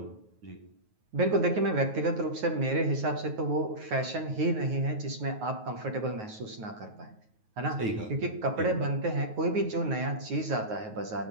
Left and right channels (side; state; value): left; late; 9.4 ms